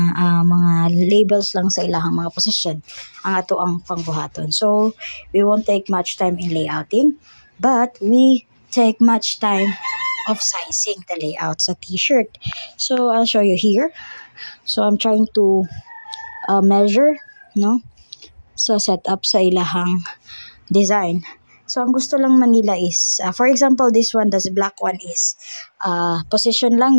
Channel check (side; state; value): both; inverted; correlation -1.00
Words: labels lang sa ilahang mga position. Ang ato ang pangbuhaton. So, we won't take much time in layouting, but we take much time of sizing the layout sa t-shirt. So I'll show you here. So I'm trying to measure, no? So set up sa ilahang design. So ang gusto lang manila is, for example, this one, this black one is position